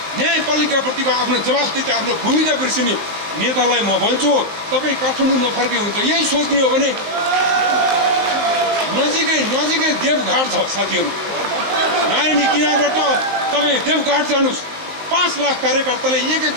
न्यायपालिकाप्रतिको आफ्नो जवाफदेही, आफ्नो भूमिका बिर्सिने नेतालाई म भन्छु, तपाईँ काठमाडौँ नफर्के हुन्छ। यही सोच्ने हो भने नजिकै देवघाट छ साथीहरू। नारायणी किनारबाट तपाईँ देवघाट जानुहोस्, 5 लाख कार्यकर्ताले 1-1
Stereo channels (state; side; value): late; left; 19 ms